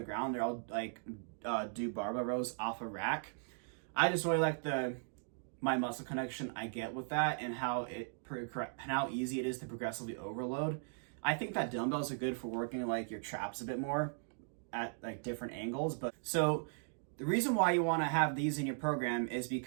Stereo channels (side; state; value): left; silent; digital silence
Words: ground. They're all like do barbell rows off a rack. I just really like my muscle connection I get with that and how easy it is to progressively overload. I think that dumbbells are good for working like your traps a bit more at like different angles. But so the reason why you want to have these in your program is